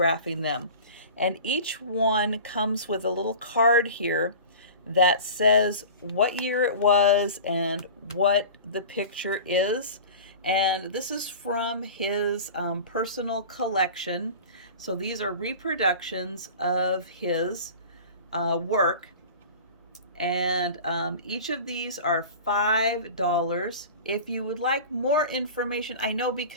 them. And each one comes with a little card here that says what year it was and what the picture is. And this is from his personal collection. So these are reproductions of his work. And each of these are $5. If you would like more information, I know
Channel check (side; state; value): both; inverted; correlation -0.37